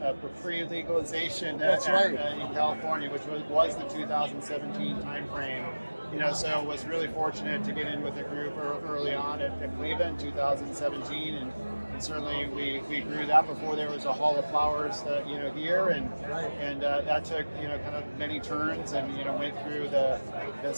pre-legalization That's right. In California, which was the 2017 timeframe. So was really fortunate to get in with a group early on at Cleveland in 2017, and certainly we grew that before there was a Hall of Flowers, here, and that took kind of many turns, and went through the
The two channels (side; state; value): both; inverted; correlation -1.00